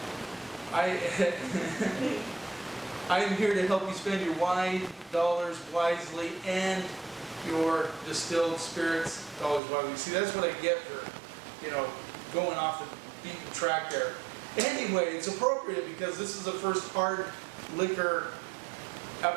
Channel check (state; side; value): drops out; left; at 9.6 s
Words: I am here to help you spend your wine dollars wisely and your distilled spirits dollars wisely. See, that's what I get for, going off the beaten track there. Anyway, it's appropriate because this is the first hard liquor